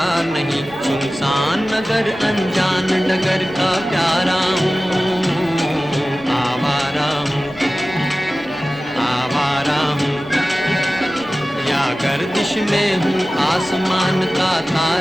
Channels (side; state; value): right; noise; rumble, 24 dB below the sound